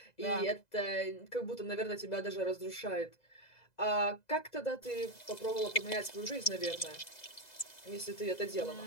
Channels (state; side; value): late; right; 2.0 ms